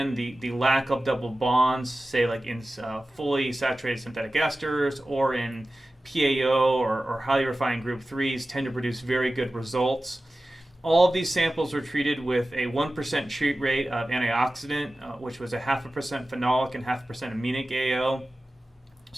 the lack of double bonds, say like in fully saturated synthetic esters or in PAO or highly refined group 3s, tend to produce very good results. All of these samples were treated with a 1% treat rate of antioxidant, which was a 0.5% phenolic and 0.5% aminic AO.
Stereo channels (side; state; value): both; normal; correlation 0.95